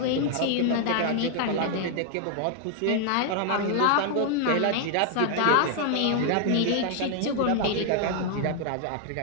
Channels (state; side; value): different; both; correlation 0.00